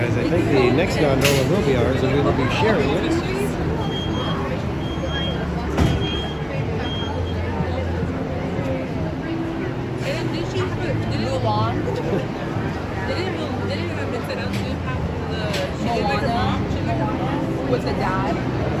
I think the next gondola will be ours, and we will be sharing it. with the dad.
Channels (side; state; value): both; identical; correlation 1.00